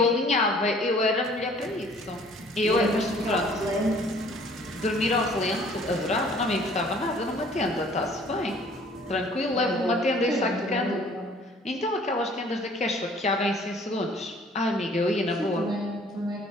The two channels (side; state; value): both; normal; correlation 0.55